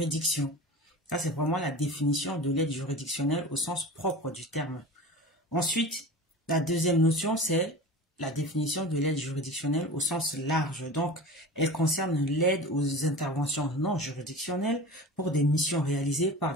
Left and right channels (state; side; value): normal; both; correlation 0.34